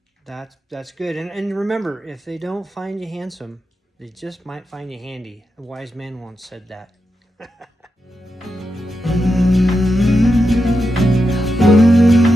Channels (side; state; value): both; normal; correlation 0.87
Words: that's good. And remember, if they don't find you handsome, they just might find you handy. A wise man once said that.